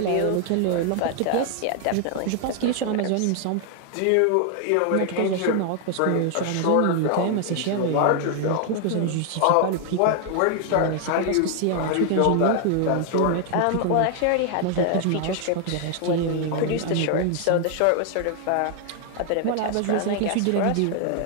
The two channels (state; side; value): different; both; correlation 0.00